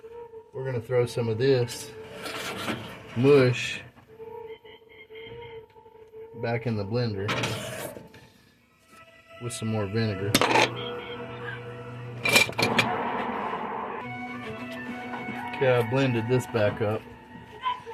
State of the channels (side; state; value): both; identical; correlation 1.00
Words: we're gonna throw some of this mush back in the blender with some more vinegar. Okay, I blended this back up.